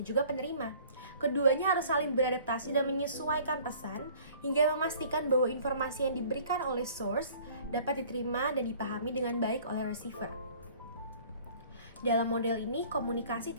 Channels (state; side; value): inverted; both; correlation -0.52